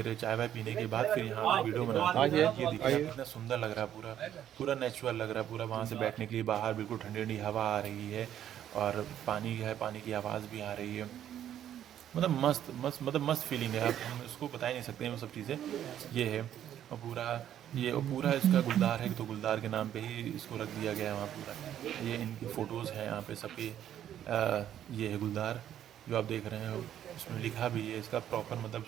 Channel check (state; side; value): quieter; left; 10.7 dB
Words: चाय वाय पीने के बाद फिर यहाँ पे वीडियो बनाते हैं। ये देखिए आप, कितना सुंदर लग रहा है, पूरा पूरा नेचुरल लग रहा है पूरा। वहाँ से बैठने के लिए बाहर बिल्कुल ठंडी ठंडी हवा आ रही है, और पानी है, पानी की आवाज़ भी आ रही है। मतलब मस्त मस्त, मतलब मस्त फीलिंग है। आप हम इसको बता ही नहीं सकते हैं वो सब चीज़ें। ये है, और पूरा इसका गुलदार है, तो गुलदार के नाम पे ही इसको रख दिया गया है वहाँ पूरा। ये इनकी फ़ोटोज़ हैं यहाँ पे सबकी। ये है गुलदार जो आप देख रहे हैं, इसमें लिखा भी है इसका प्रॉपर, मतलब